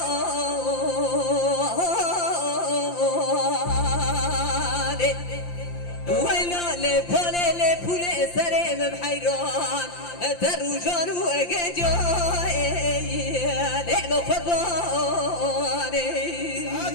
ويلا لبولي لبولي سريم بحيران تروجان وقجاي نعم قرباني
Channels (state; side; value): late; right; 5.8 ms